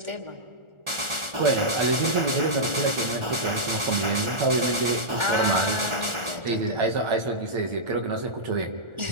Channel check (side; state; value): left; late; 1.4 ms